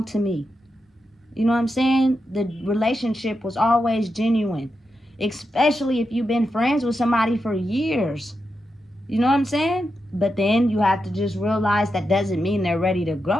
to me. You know what I'm saying? The relationship was always genuine, especially if you've been friends with somebody for years. You know what I'm saying? But then you have to just realize that doesn't mean they're ready to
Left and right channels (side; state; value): both; normal; correlation 0.87